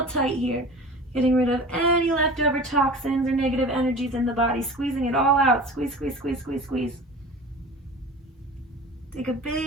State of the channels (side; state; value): both; normal; correlation 0.38